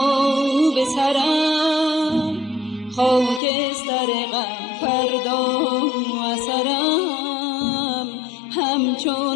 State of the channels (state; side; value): drops out; right; at 3.4 s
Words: به سرم، خاکستر غم فردا اثرم.